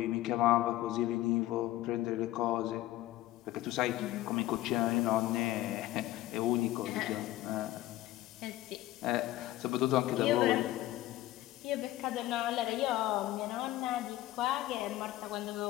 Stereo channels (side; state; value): right; quieter; 15.8 dB